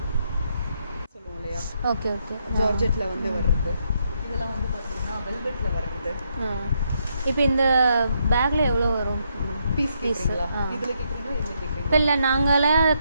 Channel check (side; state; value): both; inverted; correlation -0.76